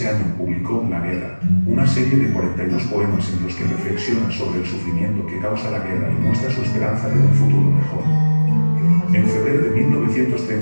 año publicó La Guerra, una serie de 42 poemas en los que reflexiona sobre el sufrimiento que causa la guerra y muestra su esperanza de un futuro mejor. En febrero de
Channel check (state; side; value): inverted; both; correlation -1.00